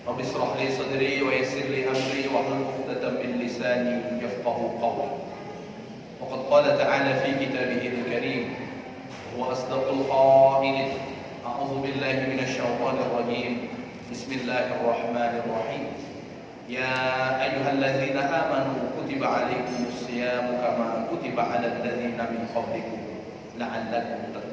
Rabbi shrah li sadri wa yassir li amri wa hlul 'uqdatam min lisani yafqahu qawli. Wa qad qala ta'ala fi kitabihi al-karim wa asdaqul qailin. A'udzu billahi minasy syaithanir rajim. Bismillahirrahmanirrahim. Ya ayyuhalladzina amanu kutiba 'alaikumus syiyamu kama kutiba 'alal ladzina min qablikum la'allakum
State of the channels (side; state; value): both; identical; correlation 1.00